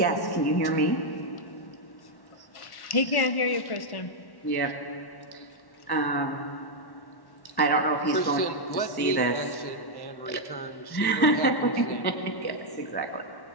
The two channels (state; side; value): late; right; 1.1 ms